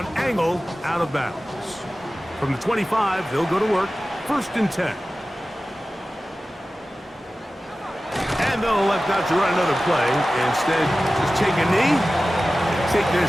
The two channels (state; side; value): normal; both; correlation 0.96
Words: angled out of bounds. From the 25, they'll go to work. 1st and 10. And they'll elect not to run another play. Instead, just take a knee and take